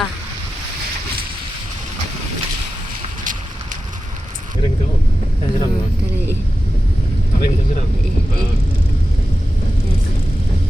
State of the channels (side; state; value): both; normal; correlation 0.93